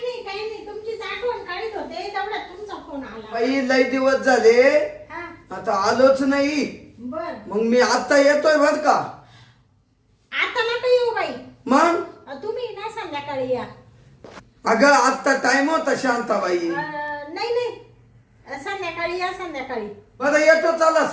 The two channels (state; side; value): identical; both; correlation 1.00